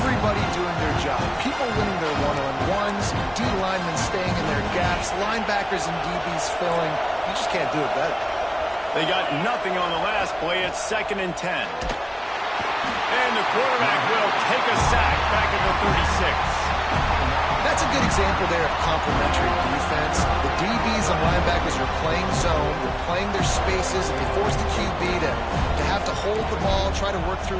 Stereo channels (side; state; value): both; identical; correlation 1.00